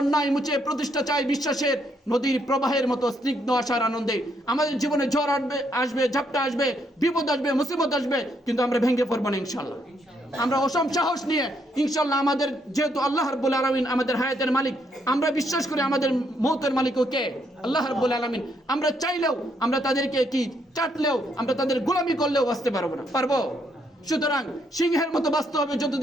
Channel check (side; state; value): both; normal; correlation 0.74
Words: মুছে প্রতিষ্ঠা চাই বিশ্বাসের, নদীর প্রবাহের মতো স্নিগ্ধ আশার আনন্দে। আমাদের জীবনে ঝড় আসবে, ঝাপটা আসবে, বিপদ আসবে, মুসিবত আসবে, কিন্তু আমরা ভেঙে পড়বো না ইনশাল্লাহ। আমরা অসম সাহস নিয়ে ইনশাল্লাহ, আমাদের যেহেতু আল্লাহ রাব্বুল আলামিন আমাদের হায়াতের মালিক, আমরা বিশ্বাস করি আমাদের মৌতের মালিকও কে? আল্লাহ রাব্বুল আলামিন। আমরা চাইলেও, আমরা তাদেরকে কি চাটলেও, আমরা তাদের গোলামি করলেও বাঁচতে পারবো না, পারবো? সুতরাং সিংহের মতো বাঁচতে হবে